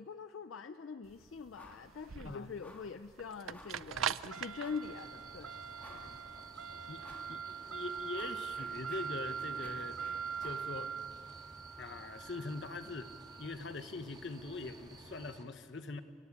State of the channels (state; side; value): normal; both; correlation 0.48